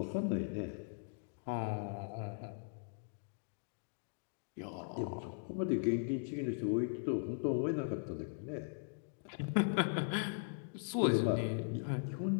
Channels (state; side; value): silent; right; digital silence